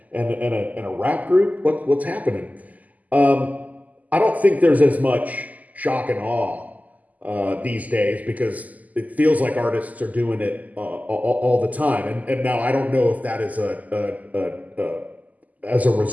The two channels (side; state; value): left; late; 0.078 ms